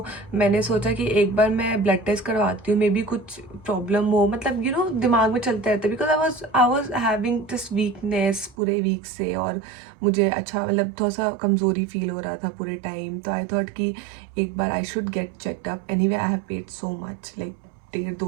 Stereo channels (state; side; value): drops out; left; at 8.6 s